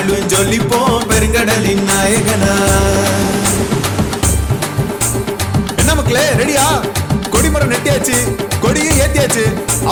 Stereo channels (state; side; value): identical; both; correlation 1.00